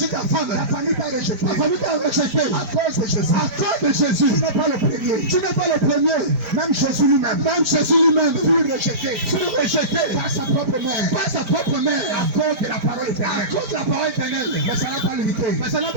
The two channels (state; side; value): late; left; 5.0 ms